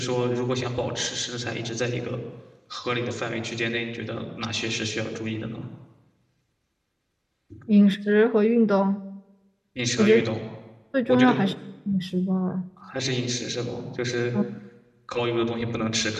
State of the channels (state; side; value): identical; both; correlation 1.00